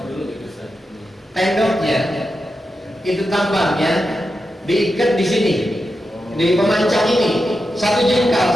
Tendoknya itu tambangnya diikat di sini, di pemancang ini, satu jengkal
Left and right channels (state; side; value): normal; both; correlation 0.89